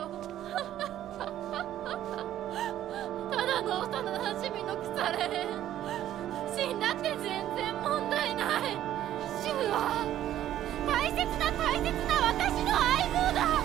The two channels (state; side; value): quieter; left; 12.2 dB